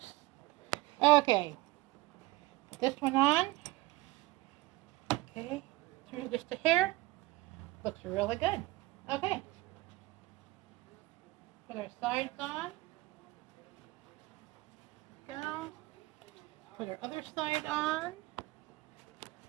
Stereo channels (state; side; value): quieter; left; 20.2 dB